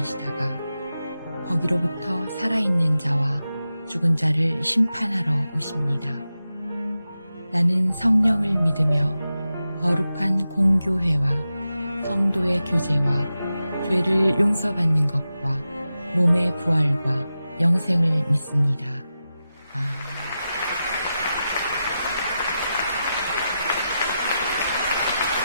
거기로부터 살아있는 자와 죽은 자를 심판하러 오십니다. 나는 성령을 믿으며 거룩한 공교회와 성도의 교제와 죄를 용서받는 것과 몸의 부활과 영생을 믿습니다. 아멘.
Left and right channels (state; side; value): inverted; both; correlation -0.91